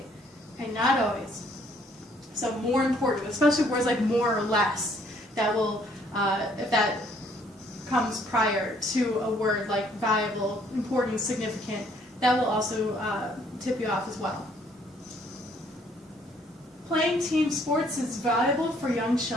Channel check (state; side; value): normal; both; correlation 0.64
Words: okay, not always. So more important, especially words like more or less, that will, if that comes prior to a word like valuable, important, significant, that will also tip you off as well. Playing team sports is valuable for young